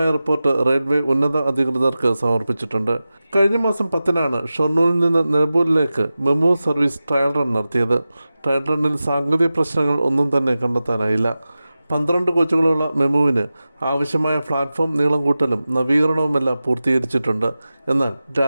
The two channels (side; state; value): both; inverted; correlation -0.95